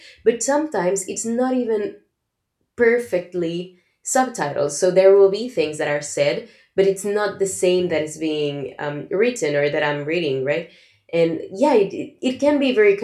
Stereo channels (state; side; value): identical; both; correlation 1.00